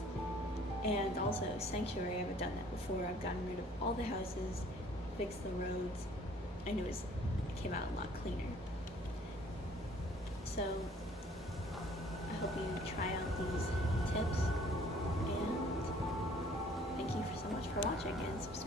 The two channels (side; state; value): both; normal; correlation 0.56